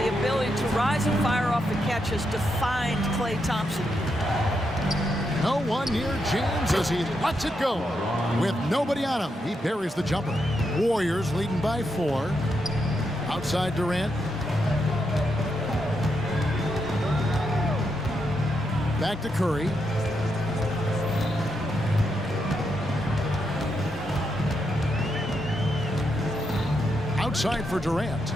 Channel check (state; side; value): normal; both; correlation 0.82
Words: ability to rise and fire off the catch has defined Klay Thompson. No one near James as he lets it go. With nobody on him, he buries the jumper. Warriors leading by 4. Outside Durant. Back to Curry. Outside for Durant.